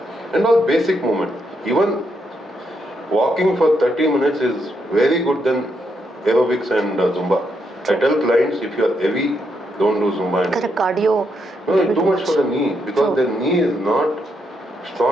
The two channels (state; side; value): normal; both; correlation 0.79